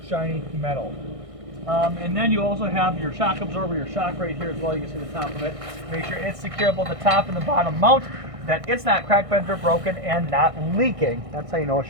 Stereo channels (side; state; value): left; late; 1.6 ms